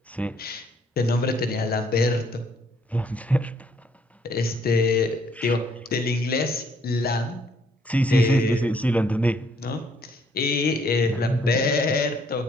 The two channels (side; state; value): both; normal; correlation 0.67